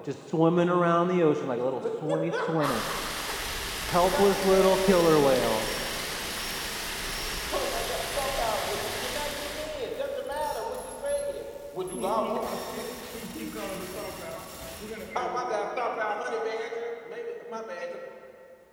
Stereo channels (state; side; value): identical; both; correlation 1.00